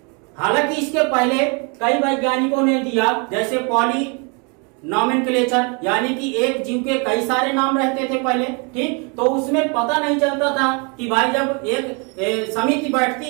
हालांकि इसके पहले कई वैज्ञानिकों ने दिया, जैसे पॉली नॉमेनक्लेचर, यानी कि एक जीव के कई सारे नाम रहते थे पहले। ठीक, तो उसमें पता नहीं चलता था कि भाई जब एक समिति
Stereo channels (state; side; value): quieter; left; 33.7 dB